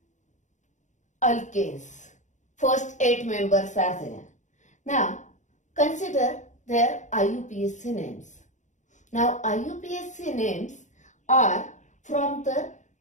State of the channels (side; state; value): right; late; 0.35 ms